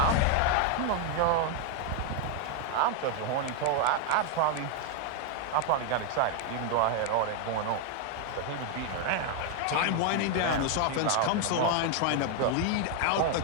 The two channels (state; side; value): different; both; correlation 0.01